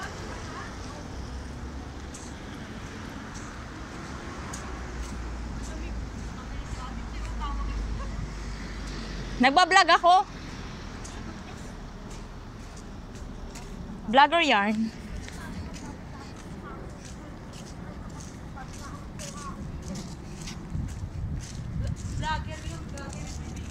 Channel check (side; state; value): both; identical; correlation 1.00